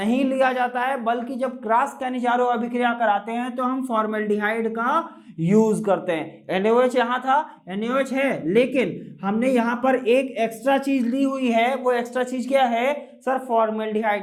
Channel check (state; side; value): identical; both; correlation 1.00